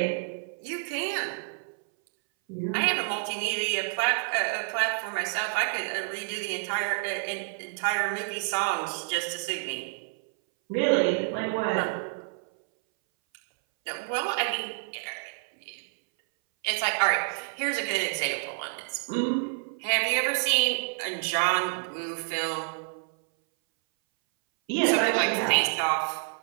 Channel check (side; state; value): left; silent; 59 dB below the other